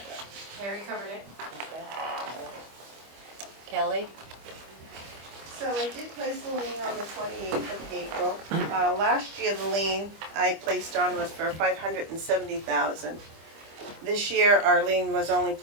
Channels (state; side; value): late; left; 25 ms